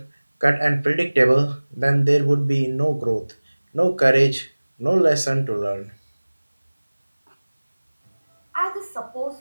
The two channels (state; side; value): inverted; both; correlation -1.00